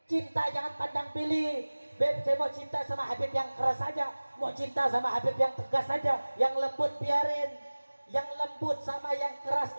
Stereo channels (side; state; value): both; inverted; correlation -1.00